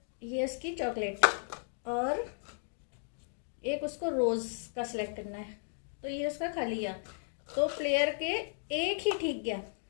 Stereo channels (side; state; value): right; silent; digital silence